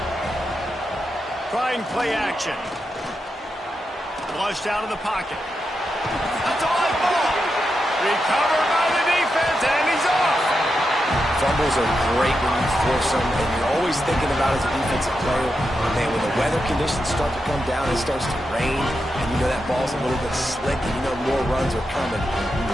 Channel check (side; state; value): both; normal; correlation 0.87